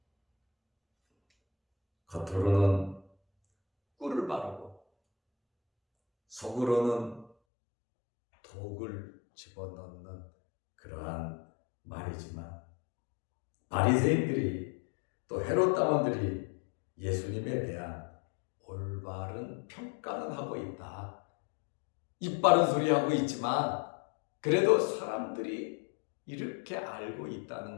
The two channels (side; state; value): right; drops out; at 7.3 s